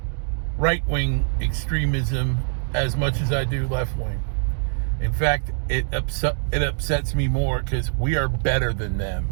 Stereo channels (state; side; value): silent; left; 63 dB below the other